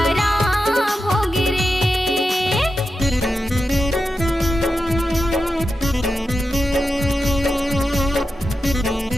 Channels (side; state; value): both; normal; correlation 0.90